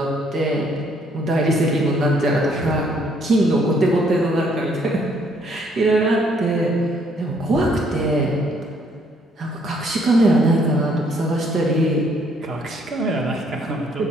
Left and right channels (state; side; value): normal; both; correlation 0.66